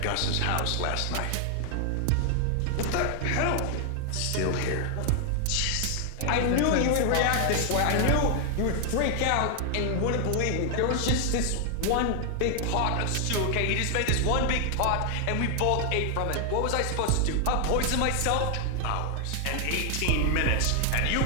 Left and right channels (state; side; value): different; both; correlation 0.00